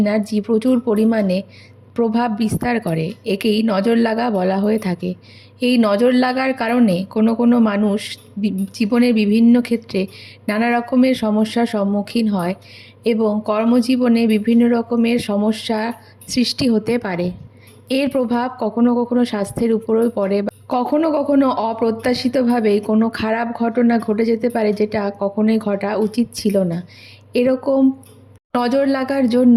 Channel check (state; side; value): identical; both; correlation 1.00